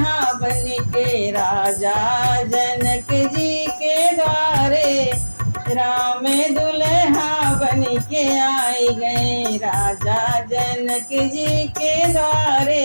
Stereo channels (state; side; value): inverted; both; correlation -1.00